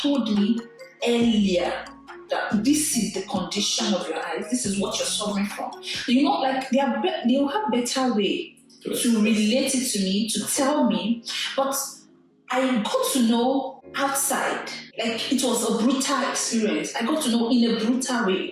me earlier that this is the condition of your eyes, this is what you're suffering from, like they'll have better way to relate it to me, to tell me. But I got to know outside, like it was a brutal experience. I got to know in a brutal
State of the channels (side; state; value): both; identical; correlation 1.00